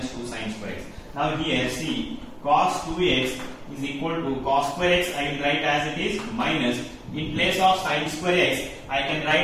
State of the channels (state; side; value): identical; both; correlation 1.00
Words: 2 sin square x. Now here see, cos 2x is equal to cos square x I will write as it is minus, in place of sin square x I can